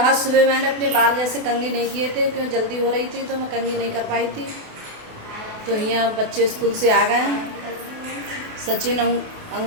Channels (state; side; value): late; left; 28 ms